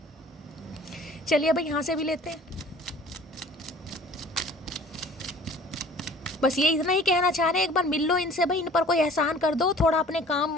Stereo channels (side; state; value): both; normal; correlation 0.49